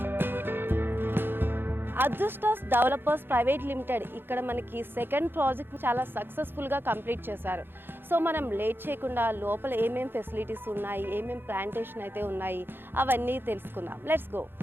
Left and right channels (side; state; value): left; late; 0.10 ms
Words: అదృష్టాస్ డెవలపర్స్ ప్రైవేట్ లిమిటెడ్ ఇక్కడ మనకి సెకండ్ ప్రాజెక్ట్ చాలా సక్సెస్ఫుల్గా కంప్లీట్ చేశారు. సో మనం లేట్ చేయకుండా లోపల ఏమేం ఫెసిలిటీస్ ఉన్నాయి, ఏమేం ప్లాంటేషన్ అయితే ఉన్నాయి అవన్నీ తెలుసుకుందాం. Let's go.